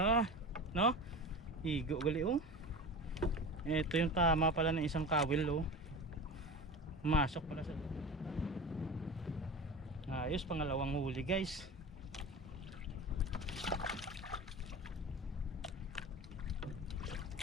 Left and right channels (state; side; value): normal; both; correlation 0.30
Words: No? Igo gali oh. Ito yung tama pala ng isang kawil oh. Masok pala sa ayos, pangalawang huli guys.